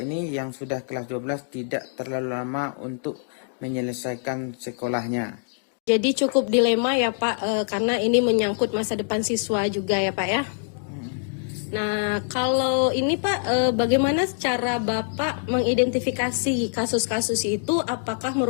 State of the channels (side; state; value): right; silent; digital silence